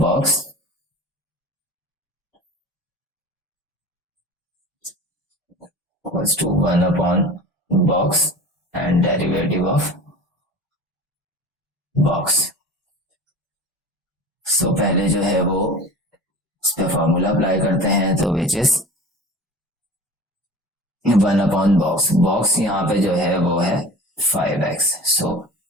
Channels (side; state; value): both; normal; correlation 0.37